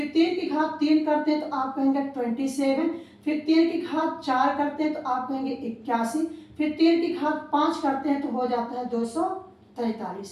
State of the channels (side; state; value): both; identical; correlation 1.00